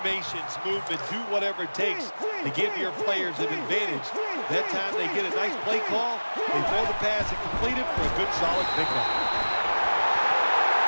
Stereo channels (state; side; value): inverted; both; correlation -1.00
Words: movement, do whatever it takes to give your players an advantage. That time they get a nice play call, they throw the pass and complete it for a good, solid pickup.